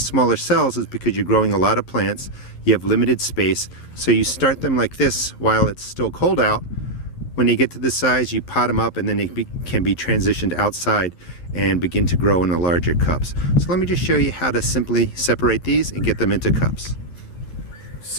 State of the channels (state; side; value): late; right; 11 ms